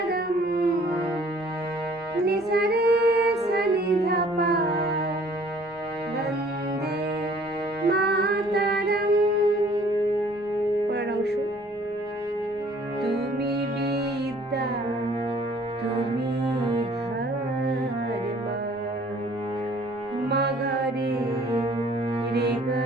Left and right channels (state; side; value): normal; both; correlation 0.56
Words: নিশা রে সনি ধপা বন্দে মাতরম। পরের অংশ। তুমি বিদ্যা তুমি ধর্ম, মগরে রে